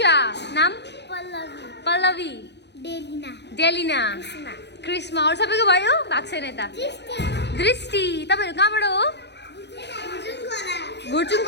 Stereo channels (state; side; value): late; right; 0.50 ms